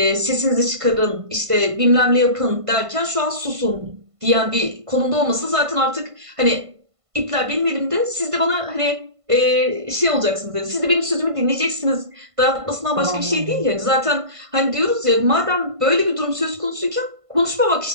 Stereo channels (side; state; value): left; late; 1.5 ms